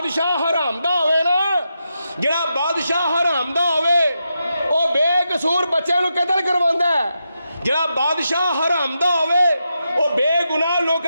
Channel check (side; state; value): both; inverted; correlation -0.86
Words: حرام دا ہوئے نا، جڑا بادشاہ حرام دا ہوئے وہ بے قصور بچے نو قتل کرواندہ ہے، جڑا بادشاہ حرام دا ہوئے وہ بے گناہ